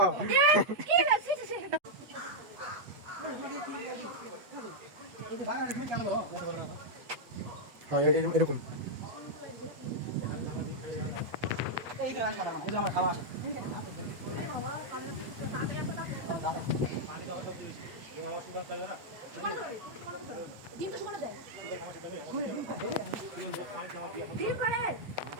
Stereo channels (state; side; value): late; left; 8.2 ms